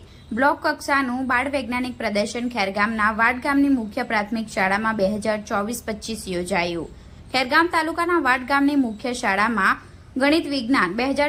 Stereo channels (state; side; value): identical; both; correlation 1.00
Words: બ્લોક કક્ષાનું બાળ વૈજ્ઞાનિક પ્રદર્શન ખેરગામના વાડ ગામની મુખ્ય પ્રાથમિક શાળામાં 2024-25 યોજાયું। ખેરગામ તાલુકાના વાડ ગામની મુખ્ય શાળામાં ગણિત વિજ્ઞાન